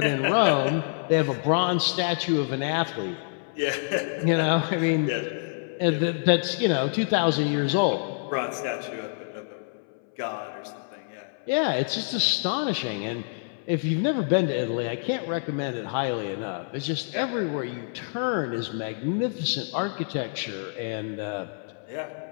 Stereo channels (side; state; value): right; silent; 59 dB below the other